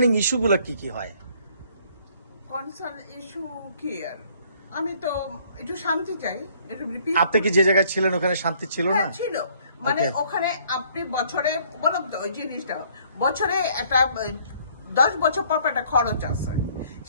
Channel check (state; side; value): inverted; both; correlation -0.62